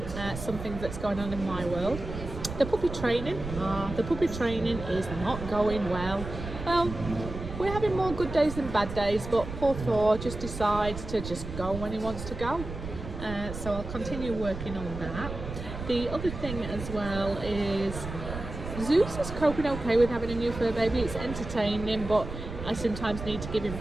something that's going on in my world. The puppy training is not going well. Well, we're having more good days than bad days, but poor Thor just decides to just go when he wants to go. So I'll continue working on that. The other thing as well is Zeus is coping okay with having a new fur baby. It's entertaining, but I sometimes need to give him a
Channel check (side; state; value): right; noise; rumble, 8 dB below the sound